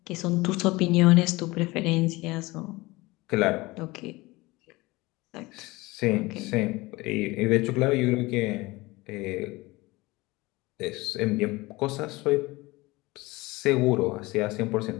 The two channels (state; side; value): quieter; right; 21.6 dB